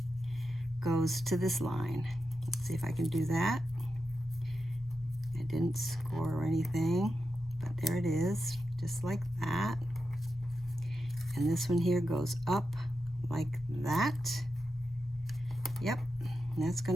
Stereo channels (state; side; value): normal; both; correlation 0.89